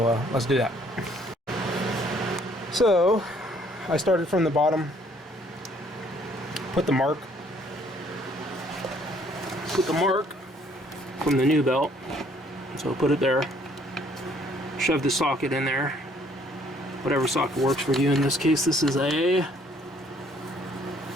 let's do that. So I started from the bottom, put the mark from the new belt. So put it there, shove the socket in there, whatever socket works for you. In this case, this is a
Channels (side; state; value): both; normal; correlation 0.62